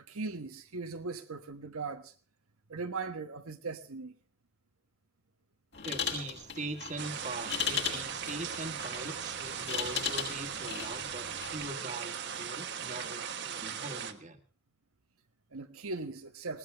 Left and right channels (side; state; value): both; normal; correlation 0.03